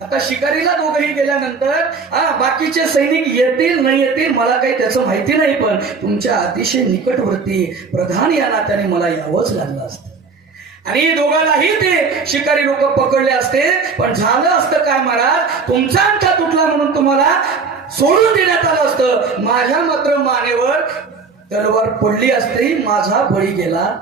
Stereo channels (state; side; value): quieter; left; 4.8 dB